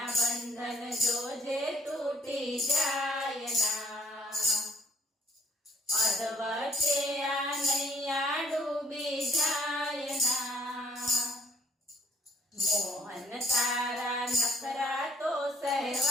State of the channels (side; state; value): both; normal; correlation 0.64